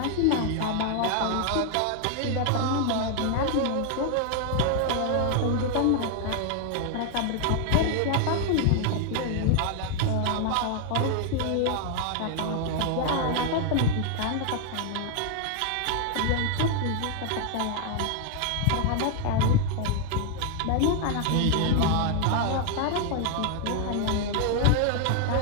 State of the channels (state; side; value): different; both; correlation 0.00